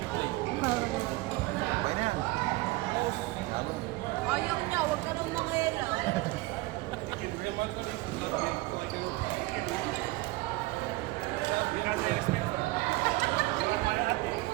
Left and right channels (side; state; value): left; quieter; 20.3 dB